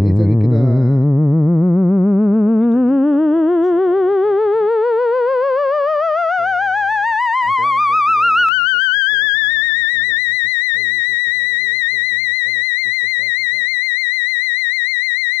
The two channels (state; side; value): drops out; right; at 8.5 s